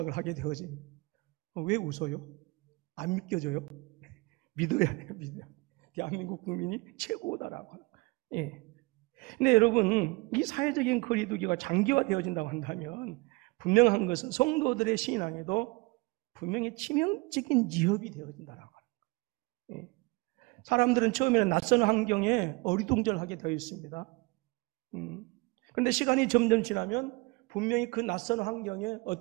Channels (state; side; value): quieter; left; 25.3 dB